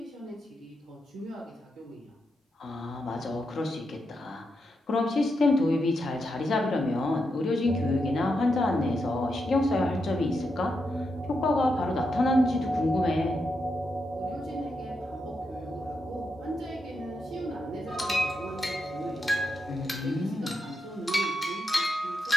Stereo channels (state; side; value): normal; both; correlation 0.84